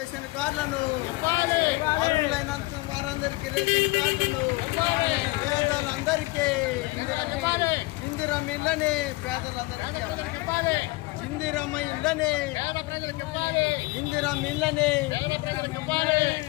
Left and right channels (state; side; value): quieter; right; 22.1 dB